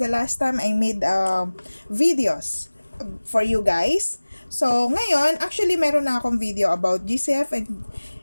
last time I made videos for you guys. So ngayon, actually meron na akong video about GCF and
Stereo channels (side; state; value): both; inverted; correlation -1.00